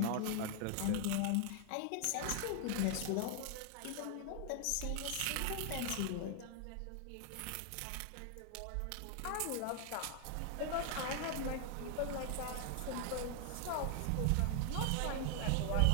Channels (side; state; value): both; different; correlation 0.00